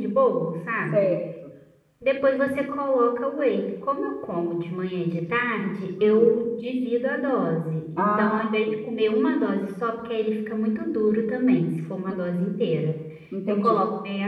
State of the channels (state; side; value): identical; both; correlation 1.00